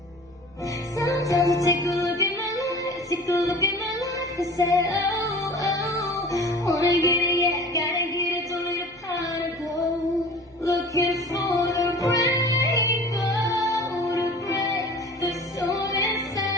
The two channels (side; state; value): left; noise; hum, 28 dB below the sound